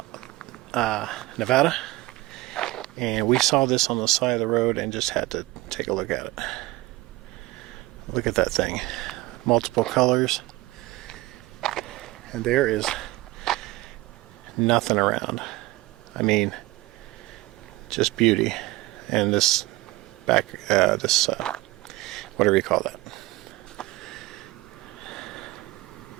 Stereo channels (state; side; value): quieter; left; 19.5 dB